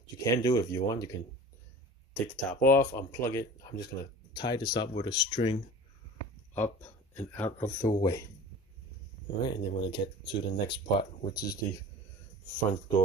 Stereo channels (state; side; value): normal; both; correlation 0.39